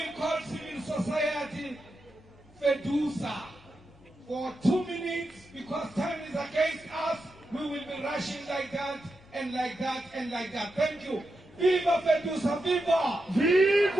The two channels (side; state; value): both; normal; correlation 0.88